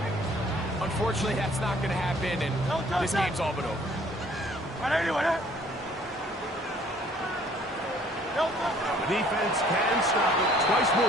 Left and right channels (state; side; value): normal; both; correlation 0.58